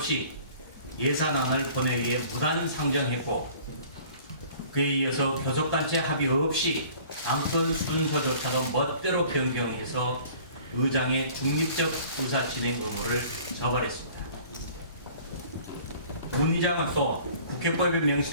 예산안을 본회의에 무단 상정했고, 그에 이어서 교섭단체 합의 없이 안건 순서조차도 멋대로 변경해서 의장의 중립적 의사 진행 의무를 저버렸습니다. 문 의장은 또 국회법에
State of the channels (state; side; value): inverted; both; correlation -0.50